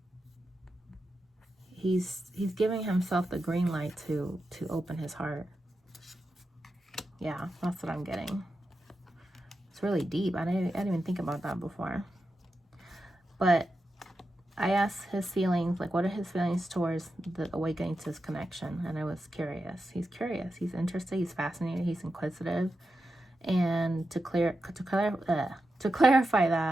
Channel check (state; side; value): normal; both; correlation 0.89